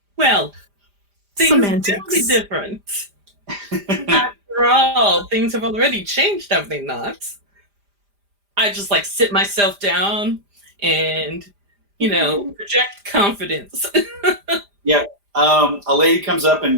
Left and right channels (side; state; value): left; late; 5.0 ms